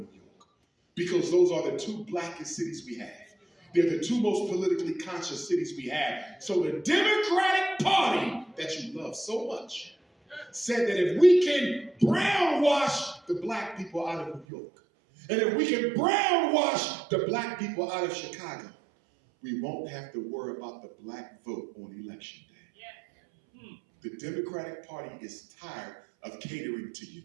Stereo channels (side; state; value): left; drops out; at 14.5 s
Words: York? Because those are the two blackest cities we have. They're the two most politically conscious cities we have. So the Democratic Party that you love so much said that if we can brownwash the black people out of New York, and if we can brownwash the black people out of Chicago, we won't have to worry about the black vote on election day. The Democratic Party is tired of catering to you.